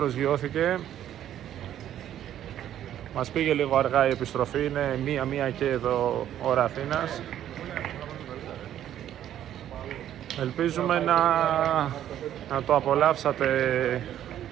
Μας πήγε λίγο αργά η επιστροφή, είναι 1 και εδώ ώρα Αθήνας. Ελπίζουμε να το απολαύσατε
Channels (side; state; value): left; quieter; 11.2 dB